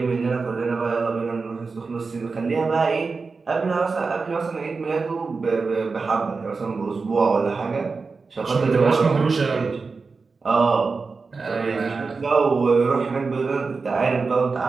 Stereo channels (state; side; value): quieter; left; 4.4 dB